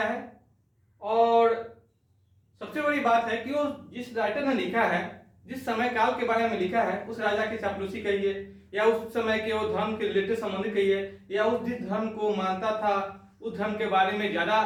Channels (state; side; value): identical; both; correlation 1.00